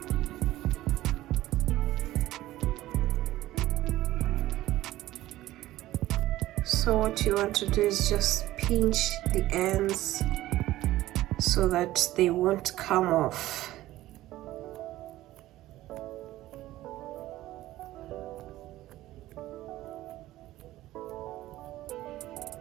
So what you want to do is just pinch the ends so that they won't come off.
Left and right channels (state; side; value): quieter; left; 15.7 dB